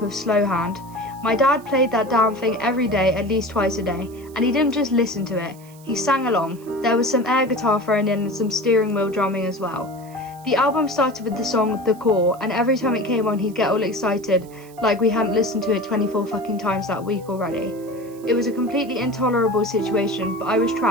of Slow Hand. My dad played that damn thing every day, at least twice a day, and he didn't just listen to it, he sang along. There was some air guitar thrown in and some steering wheel drumming as well. The album started with the song The Core, and every time it came on he'd get all excited, like we hadn't listened to it 24 fucking times that week already. It was a completely intolerable situation, but I was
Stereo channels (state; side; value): noise; right; hiss, 25 dB below the sound